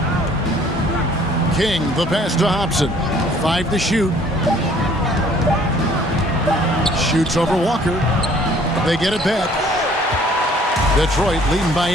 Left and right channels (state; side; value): normal; both; correlation 0.57